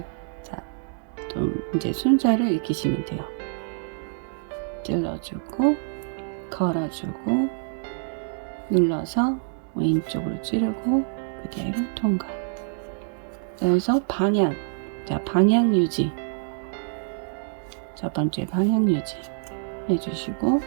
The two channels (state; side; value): silent; left; digital silence